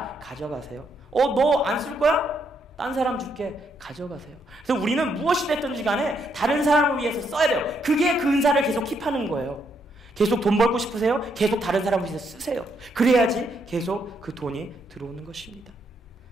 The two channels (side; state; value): both; normal; correlation 0.75